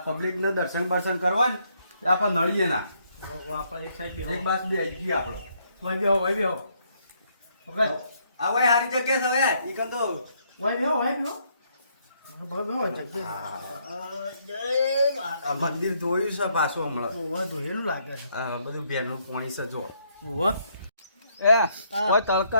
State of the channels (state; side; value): inverted; both; correlation -0.72